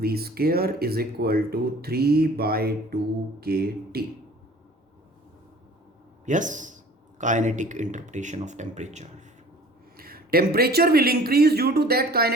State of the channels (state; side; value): normal; both; correlation 0.48